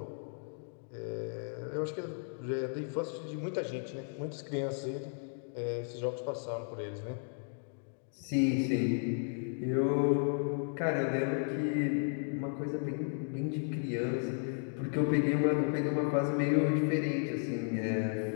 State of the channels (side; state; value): right; silent; 55 dB below the other